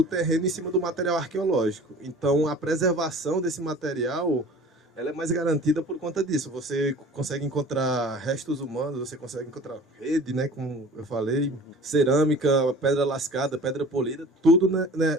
terreno em cima do material arqueológico. Então, a preservação desse material, ela é mais garantida por conta disso. Você consegue encontrar restos humanos, você consegue encontrar rede, né, como eu falei, cerâmica, pedra lascada, pedra polida, tudo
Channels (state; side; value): normal; both; correlation 0.44